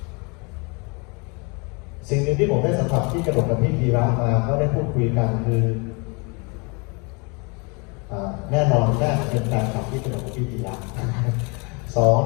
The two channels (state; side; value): quieter; right; 31.3 dB